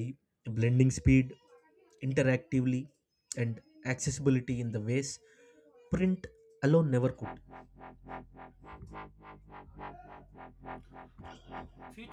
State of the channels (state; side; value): identical; both; correlation 1.00